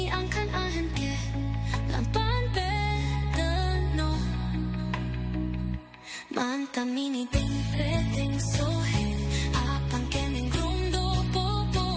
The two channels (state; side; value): identical; both; correlation 1.00